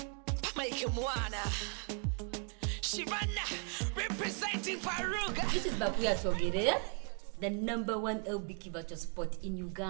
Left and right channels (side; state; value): left; quieter; 38.4 dB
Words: Mike Mwana Shivana representing Faruga. This is BaQueer Twogere, the #1 LBQ virtual spot in